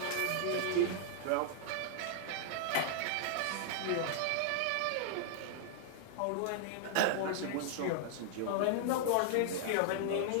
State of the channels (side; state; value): both; different; correlation -0.01